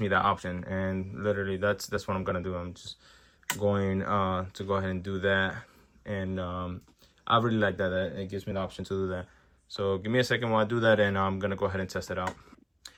me that option, and literally that's what I'm gonna do. I'm just going to go ahead and do that, and I really like that it gives me the option to do that. So give me a second while I do that, and I'm gonna go ahead and test it out.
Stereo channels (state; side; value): identical; both; correlation 1.00